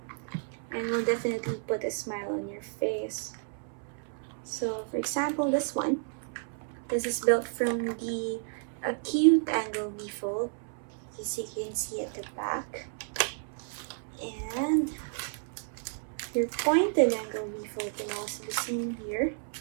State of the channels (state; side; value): silent; left; 57 dB below the other